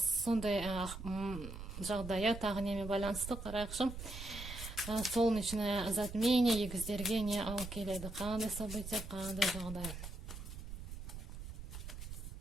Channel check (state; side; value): noise; right; rumble, 9 dB below the sound